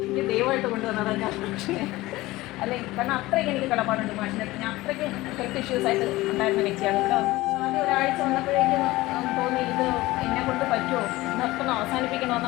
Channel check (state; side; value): quieter; right; 18.7 dB